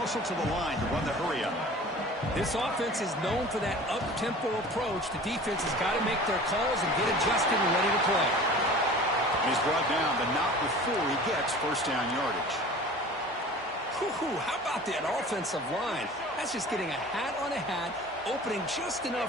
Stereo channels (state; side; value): normal; both; correlation 0.41